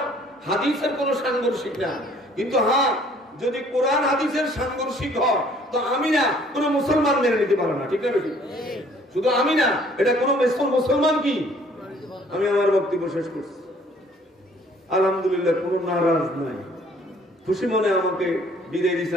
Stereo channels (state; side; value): normal; both; correlation 0.58